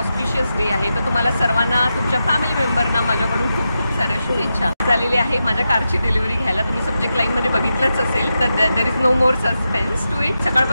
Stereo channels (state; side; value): inverted; both; correlation -0.89